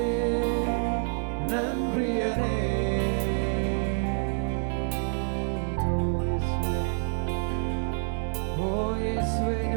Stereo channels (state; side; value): silent; left; 60 dB below the other